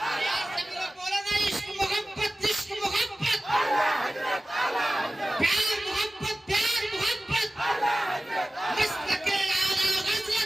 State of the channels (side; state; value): both; normal; correlation 0.97